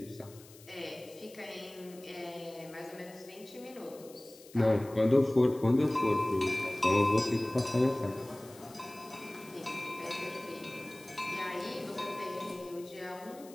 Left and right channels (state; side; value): noise; left; hiss, 22 dB below the sound